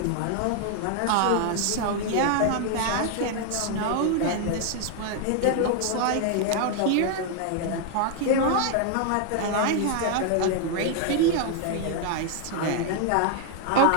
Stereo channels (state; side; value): different; both; correlation 0.00